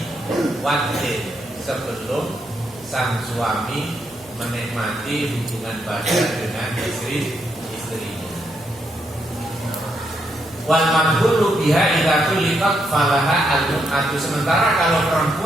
wadin, sebelum sang suami menikmati hubungan badan dengan istrinya. Wal madhulu biha idza tuliqat falaha al-mut'atu. Sementara kalau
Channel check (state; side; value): noise; right; hum, 29 dB below the sound